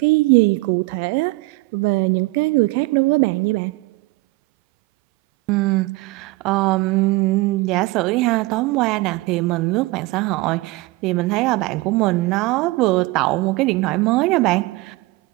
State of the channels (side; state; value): left; quieter; 21.8 dB